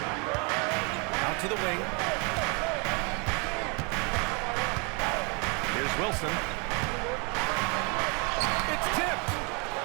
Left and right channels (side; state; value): left; quieter; 33.3 dB